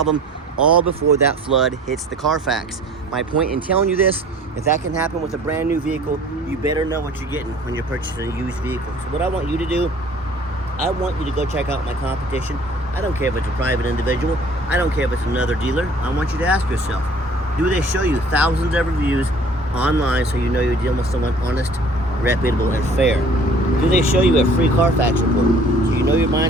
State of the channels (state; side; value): normal; both; correlation 0.51